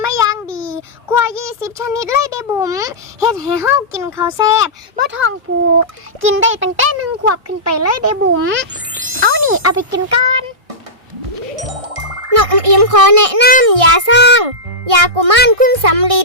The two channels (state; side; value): late; left; 1.6 ms